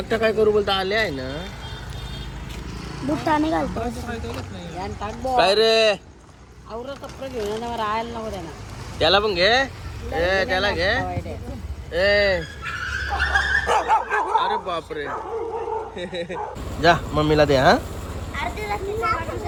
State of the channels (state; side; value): identical; both; correlation 1.00